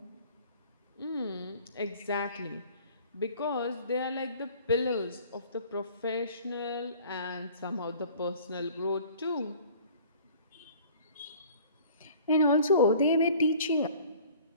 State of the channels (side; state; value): both; inverted; correlation -0.49